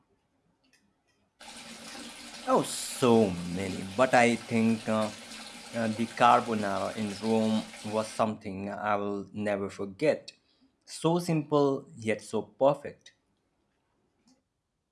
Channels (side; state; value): both; identical; correlation 1.00